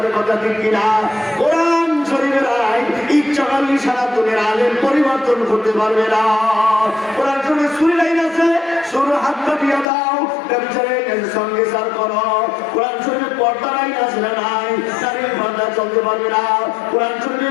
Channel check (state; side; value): drops out; right; at 9.9 s